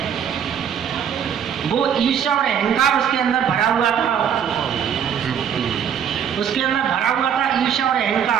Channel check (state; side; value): quieter; left; 8.3 dB